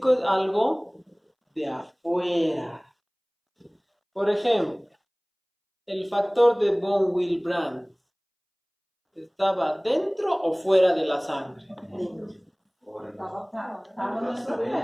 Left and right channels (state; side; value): identical; both; correlation 1.00